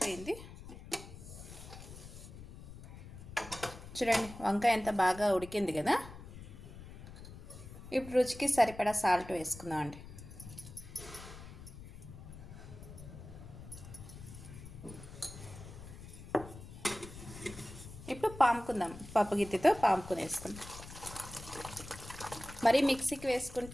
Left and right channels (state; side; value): noise; left; rumble, 14 dB below the sound